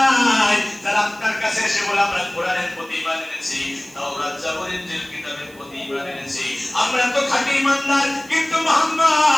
যারা আপনার কাছে এসে বলে আমরা কোরআনের প্রতি ঈমান এনেছি, তাওরাত জাবর ইনজিল কিতাবের প্রতি ঈমান এনেছি, আমরা তো খাঁটি ঈমানদার, কিন্তু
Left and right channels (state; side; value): noise; right; hiss, 24 dB below the sound